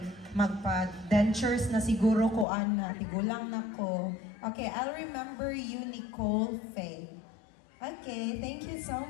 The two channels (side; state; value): right; drops out; at 2.5 s